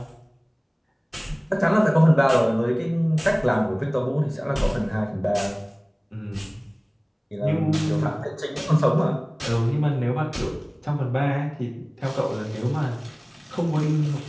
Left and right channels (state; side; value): identical; both; correlation 1.00